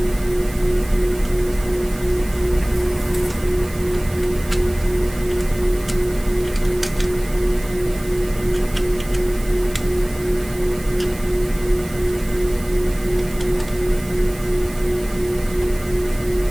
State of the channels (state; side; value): noise; right; hiss, 18 dB below the sound